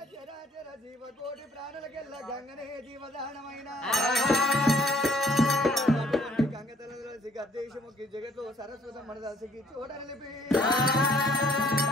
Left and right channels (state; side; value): normal; both; correlation 0.61